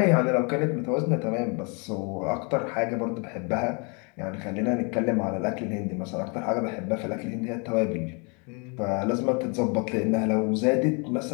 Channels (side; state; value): right; quieter; 34.0 dB